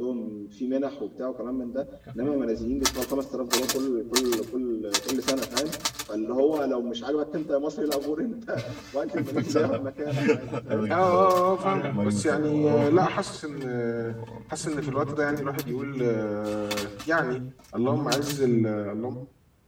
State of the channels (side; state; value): both; identical; correlation 1.00